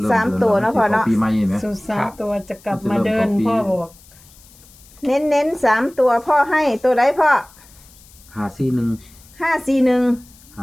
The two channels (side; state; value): left; noise; hiss, 25 dB below the sound